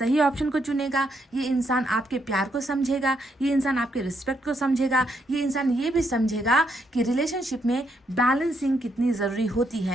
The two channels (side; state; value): both; normal; correlation 0.76